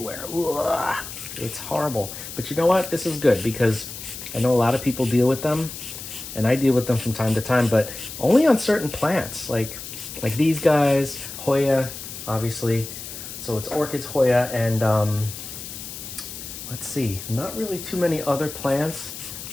Ugh, it's horrible. But you know what? This is good because I know a lot of people deal with them, and I deal with them from time to time, but only on certain plants, like these guys, Hoya, obviously. So it's orchids, Hoya, and let's see, not really too many other plants.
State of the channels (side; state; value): left; noise; hiss, 10 dB below the sound